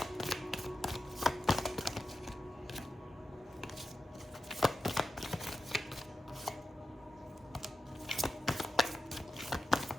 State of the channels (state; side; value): normal; both; correlation 0.91